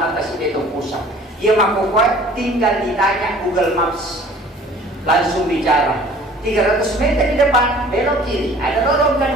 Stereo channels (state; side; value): normal; both; correlation 0.50